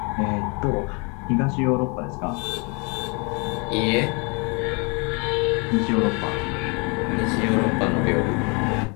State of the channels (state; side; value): quieter; right; 32.2 dB